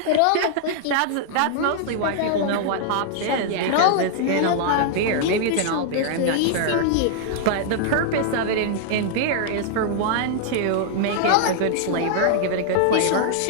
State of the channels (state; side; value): different; both; correlation -0.01